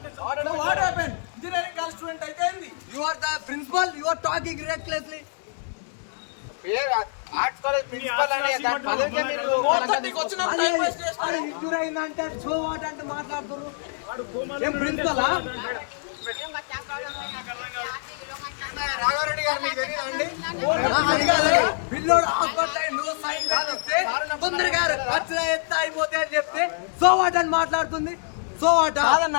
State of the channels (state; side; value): silent; right; digital silence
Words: So what happened? Engineering college student అయితే ఏంది? You are the principal. You are talking recklessly. Arts college principal అని college మీరు 4:30 కి వచ్చిన time waste చేస్తారు. అరే injure అయిందంటే so what అంటే మాట్లాడుతున్నారు. ఏం ప్రిన్సిపలా? రాఘారెడ్డి గారు మీకు తెలియదండి పిల్లోడు హాస్పిటల్ నువ్వు సైన్ పెట్టిస్తే తొందరగా ఖర్చులు ఎంత అయిపోతే అని చెప్తే సో వాట్ అని మాట్లాడుతుంది. సో వాట్